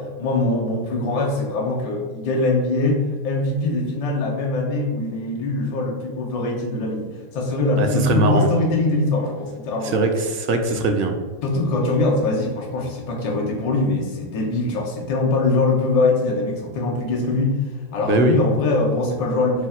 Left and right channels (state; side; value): late; left; 1.6 ms